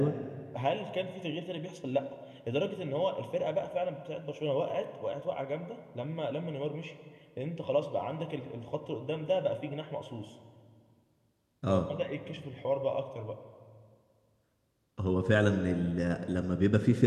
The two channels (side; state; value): both; identical; correlation 1.00